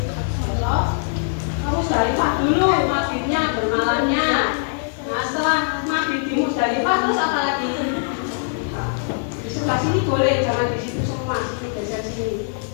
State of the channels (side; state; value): right; silent; digital silence